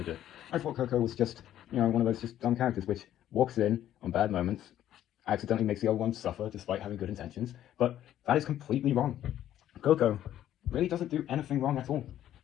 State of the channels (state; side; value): quieter; right; 11.8 dB